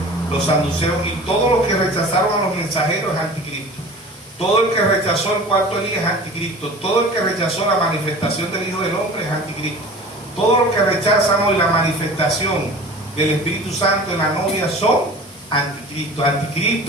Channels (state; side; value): normal; both; correlation 0.40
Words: los saduceos, y todos los que rechazaron a los mensajeros es anticristo. Todo el que rechazó el cuarto Elías es anticristo. Todo el que rechazó la manifestación del Hijo del Hombre es anticristo. Todos los que rechazan hoy la manifestación del Espíritu Santo en la novia son anticristo.